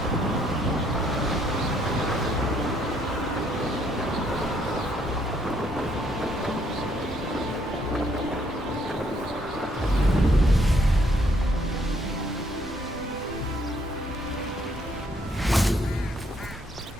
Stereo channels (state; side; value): normal; both; correlation 0.69